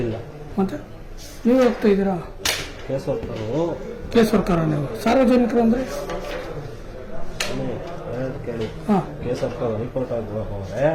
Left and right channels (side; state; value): both; identical; correlation 1.00